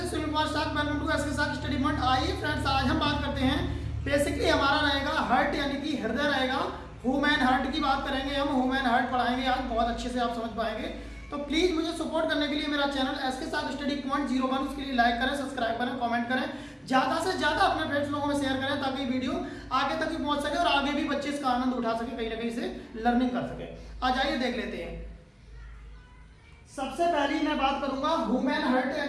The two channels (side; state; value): both; identical; correlation 1.00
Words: is Sunil Kumar साग, welcome to SK साग study point. आइए friends, आज हम बात करते हैं बेसिकली हमारा रहेगा हार्ट यानी कि हृदय रहेगा। ह्यूमन हार्ट की बात करेंगे हम, ह्यूमन हार्ट पढ़ाएंगे आज, बहुत अच्छे से आप समझ पाएंगे। तो प्लीज मुझे सपोर्ट करने के लिए मेरा चैनल एसके साग स्टडी पॉइंट 01 उसके लिए लाइक करें, सब्सक्राइब करें, कमेंट करें, ज्यादा से ज्यादा अपने फ्रेंड्स लोगों में शेयर करें ताकि वीडियो आगे तक भी पहुंच सके और आगे भी बच्चे इसका आनंद उठा सके, कहीं ना कहीं से लर्निंग कर सके। आज आइए देख लेते हैं। सबसे पहली मैं बात करूंगा ह्यूमन हार्ट